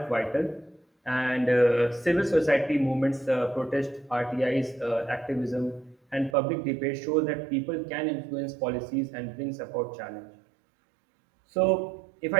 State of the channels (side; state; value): left; drops out; at 6.4 s